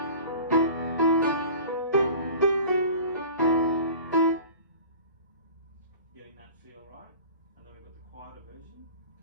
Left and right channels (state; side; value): inverted; both; correlation -0.41